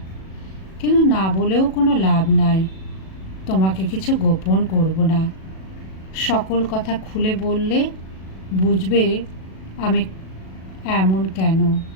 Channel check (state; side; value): late; right; 37 ms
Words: কিন্তু না বলেও কোনো লাভ নাই। তোমাকে কিছু গোপন করব না। সকল কথা খুলে বললে বুঝবে আমি এমন কেন।